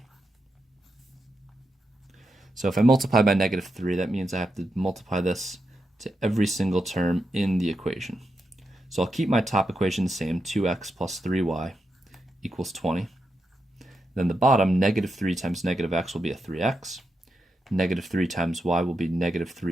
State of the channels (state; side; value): normal; both; correlation 0.86